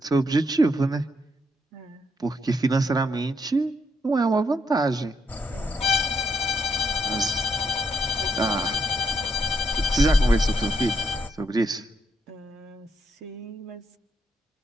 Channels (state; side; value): normal; both; correlation 0.76